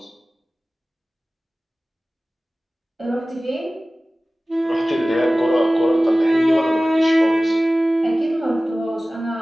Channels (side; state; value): both; normal; correlation 0.97